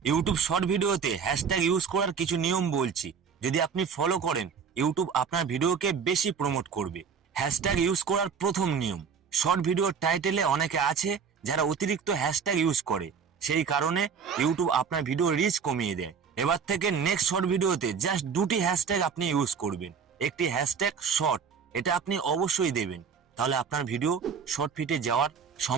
YouTube short ভিডিওতে hashtag use করার কিছু নিয়ম বলছি, যদি আপনি ফলো করেন ইউটিউব আপনার ভিডিওকে বেশি প্রমোট করবে। হ্যাশট্যাগ ইউজ করার প্রথম নিয়ম, শর্ট ভিডিওর টাইটেলে অনেকে আছে যারা অতিরিক্ত হ্যাশট্যাগ ইউজ করে, সেই কারণে ইউটিউব আপনার ভিডিও রিচ কমিয়ে দেয়। এবার থেকে নেক্সট শর্ট ভিডিওতে জাস্ট দুটি হ্যাশট্যাগ আপনি ইউজ করবেন। একটি হ্যাশট্যাগ শর্ট, এটা আপনি অবশ্যই দেবেন, তাহলে আপনার ভিডিও শর্ট ফিটে যাওয়ার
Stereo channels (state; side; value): quieter; left; 6.5 dB